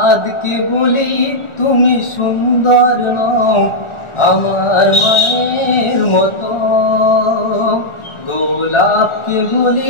বলি তুমি সুন্দর নও আমার মায়ের মতো, গোলাপকে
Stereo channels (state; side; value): late; right; 1.4 ms